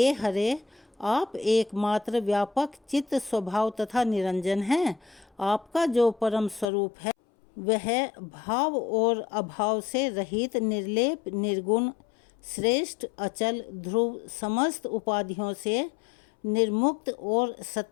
हरे आप एकमात्र व्यापक चित्त स्वभाव तथा निरंजन हैं। आपका जो परम स्वरूप है वह भाव और अभाव से रहित निर्लेप निर्गुण श्रेष्ठ अचल ध्रुव समस्त उपाधियों से निर्मुक्त और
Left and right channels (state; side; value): drops out; right; at 6.7 s